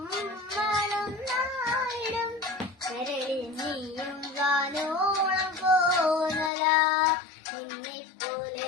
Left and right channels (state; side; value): drops out; right; at 6.5 s